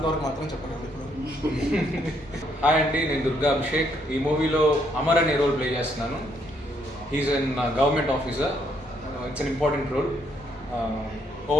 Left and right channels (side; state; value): both; normal; correlation 0.72